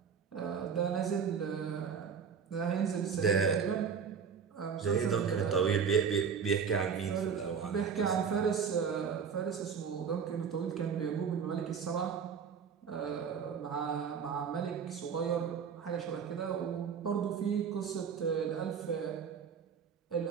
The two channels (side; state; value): left; quieter; 6.7 dB